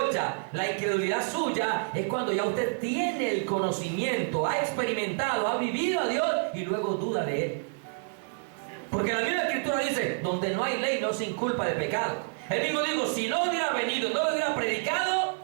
la incredulidad suya es cuando ya usted tiene el conocimiento, ha experimentado, ha vivido a Dios y luego duda de Él. Porque la misma Escritura dice: donde no hay ley no se inculpa de pecado. Él mismo dijo: si no hubiera venido, no lo hubiera predicado,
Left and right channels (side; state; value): left; silent; 59 dB below the other